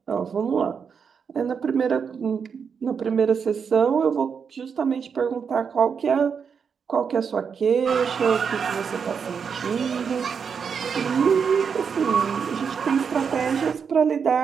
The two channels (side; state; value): left; quieter; 6.4 dB